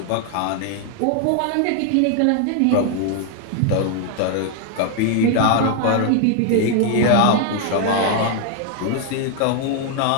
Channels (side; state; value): both; different; correlation 0.00